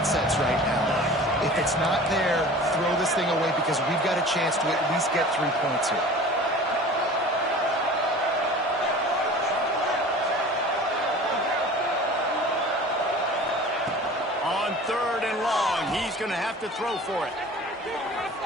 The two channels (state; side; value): normal; both; correlation 0.41